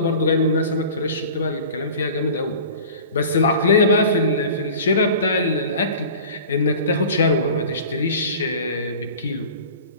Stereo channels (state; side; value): inverted; both; correlation -0.40